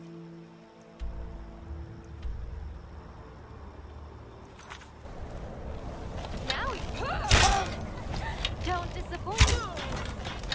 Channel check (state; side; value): identical; both; correlation 1.00